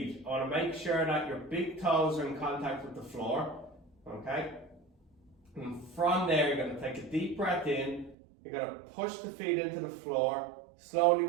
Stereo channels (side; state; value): left; drops out; at 8.2 s